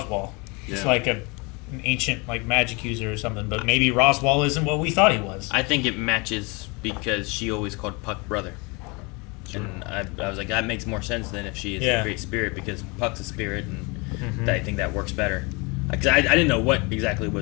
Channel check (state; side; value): quieter; right; 28.6 dB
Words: Just Yeah. like an ancient like magic user or something, but maybe Roswell isn't what we thought he was. I think it matches because she always called Puck brother. And I was like, that makes more sense than if she is Yeah. a great spirit because Puck's a spirit, and I think that works better. Because I didn't know what exactly